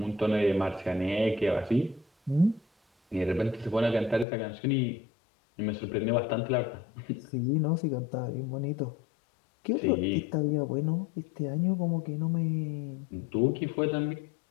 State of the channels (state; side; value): drops out; right; at 4.2 s